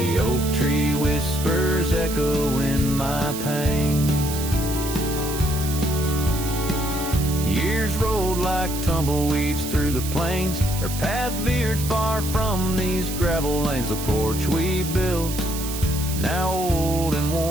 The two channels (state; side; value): noise; right; hiss, 8 dB below the sound